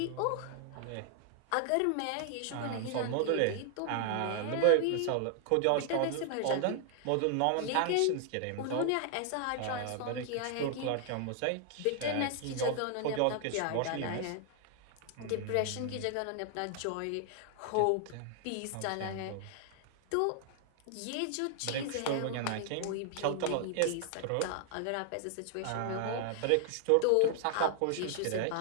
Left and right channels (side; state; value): both; different; correlation 0.00